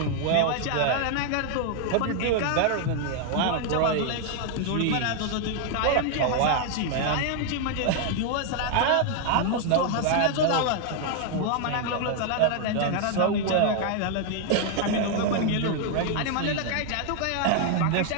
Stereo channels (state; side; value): different; both; correlation 0.00